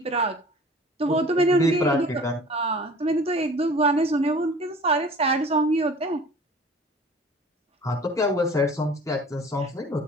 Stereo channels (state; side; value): normal; both; correlation 0.46